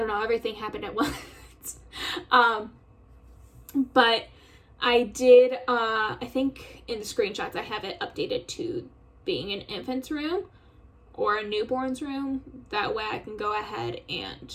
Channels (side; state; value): both; identical; correlation 1.00